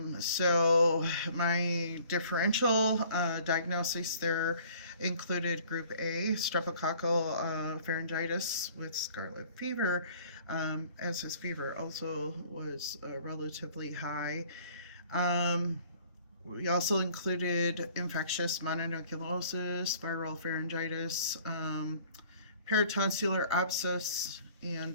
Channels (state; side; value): inverted; both; correlation -0.54